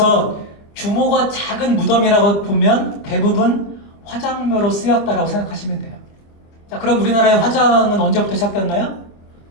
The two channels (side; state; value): right; late; 26 ms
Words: 규모가 작은 무덤이라고 보면 대부분 화장묘로 쓰였다라고 생각하시면 돼요. 자, 그럼 우리나라의 화장은 언제부터 시작됐나요?